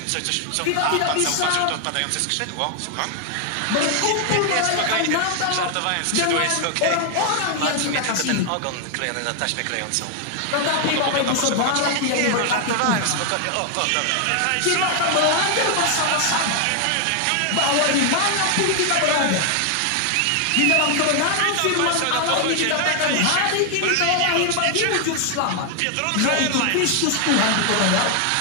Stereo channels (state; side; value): different; both; correlation 0.00